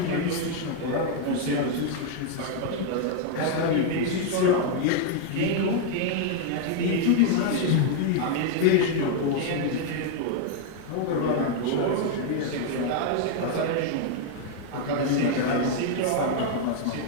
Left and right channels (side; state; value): both; different; correlation 0.00